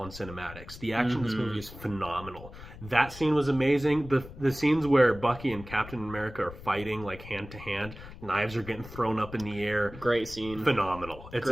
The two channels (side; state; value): left; noise; rumble, 15 dB below the sound